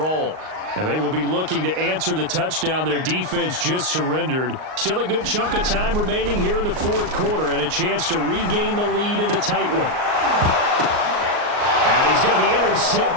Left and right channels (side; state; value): left; late; 38 ms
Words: And they will be looking to answer the touchdown their defense just surrendered. Still a good chunk of time remaining here in the 4th quarter and a chance to regain the lead in a tight one. And he's going to be